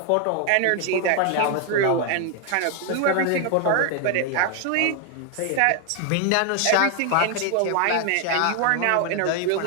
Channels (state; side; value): different; both; correlation 0.00